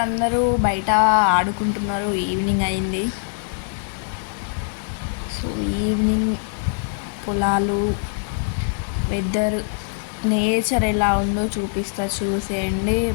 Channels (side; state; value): right; silent; digital silence